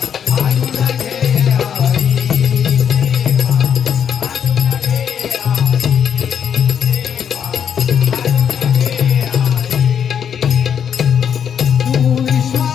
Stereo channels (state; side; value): quieter; right; 8.1 dB